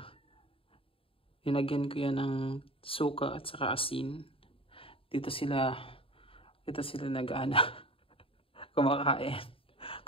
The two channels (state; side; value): late; right; 0.27 ms